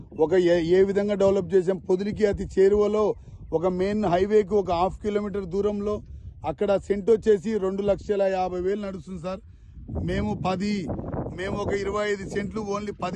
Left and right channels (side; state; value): both; identical; correlation 1.00